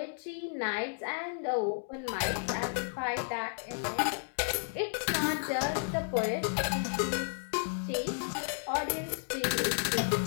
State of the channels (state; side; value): silent; right; digital silence